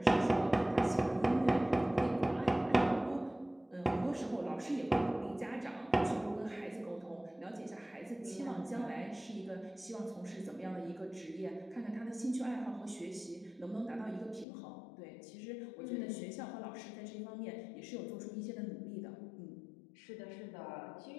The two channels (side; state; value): right; drops out; at 14.5 s